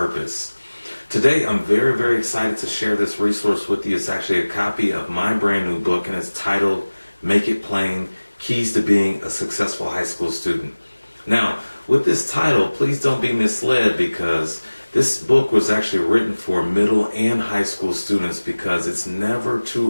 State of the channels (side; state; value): both; inverted; correlation -1.00